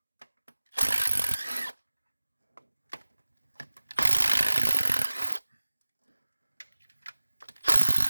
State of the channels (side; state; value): both; inverted; correlation -1.00